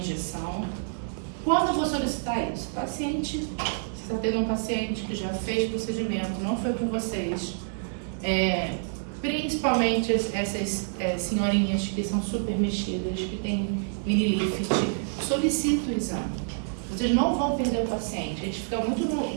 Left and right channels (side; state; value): left; silent; digital silence